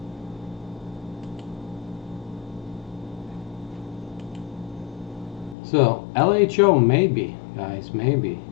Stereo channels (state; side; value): drops out; right; at 5.6 s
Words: So, LHO, maybe, guys, maybe.